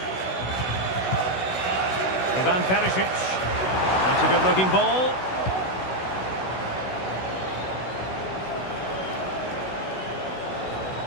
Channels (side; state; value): right; late; 16 ms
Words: Ivan Perisic. That's a good-looking ball.